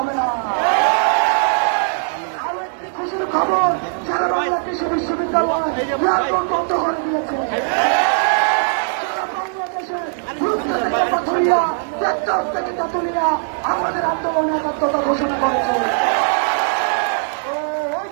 হবে না। আরো একটি খুশির খবর, সারা বাংলা কৃষি বিশ্ববিদ্যালয় এয়ারপোর্ট বন্ধ করে দিয়েছে। সারা বাংলাদেশের পাথুরিয়া টেকনাফ থেকে তেঁতুলিয়া আমাদের আন্দোলনে একাত্মতা ঘোষণা করেছে। ওই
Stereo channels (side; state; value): left; silent; digital silence